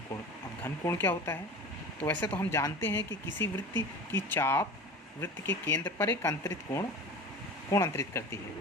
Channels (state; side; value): normal; both; correlation 0.36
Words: अब घनकोण क्या होता है? तो वैसे तो हम जानते हैं कि किसी वृत्त की चाप वृत्त के केंद्र पर एक अंतरित कोण अंतरित करती है,